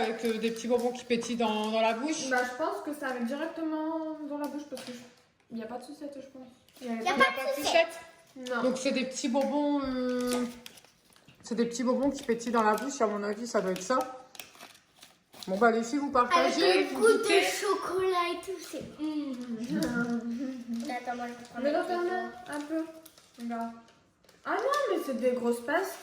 des petits bonbons qui pétillent dans la bouche. bah, je pense que ça va directement dans la bouche parce que il n'y a pas de sucette, je pense. Y a pas de sucette. Non. Donc c'est des petits bonbons. C'est des petits bonbons qui pétillent dans la bouche. À mon avis, ça doit être ça. Bon bah les filles, vous partagez. Avec le vous goût de goûtez. chocolat et tout, c'est... Attends, moi je vais prendre Mais la regarde photo. un peu. Regarde. Ah non, mais c'est des grosses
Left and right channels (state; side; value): identical; both; correlation 1.00